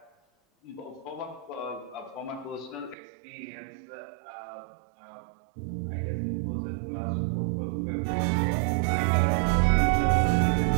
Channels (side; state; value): left; drops out; at 3.0 s